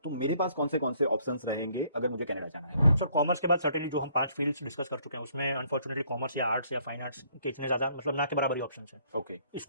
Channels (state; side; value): inverted; both; correlation -0.65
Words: तो मेरे पास कौन से ऑप्शंस रहेंगे अगर मुझे कनाडा जाना है? सर कॉमर्स के बाद सर्टेनली जो हम 5 फील्ड्स डिस्कस कर चुके हैं, उसमें अनफॉर्चुनेटली कॉमर्स या आर्ट्स या फाइन आर्ट्स के इतने ज़्यादा मतलब ना के बराबर ही ऑप्शंस हैं. ओके,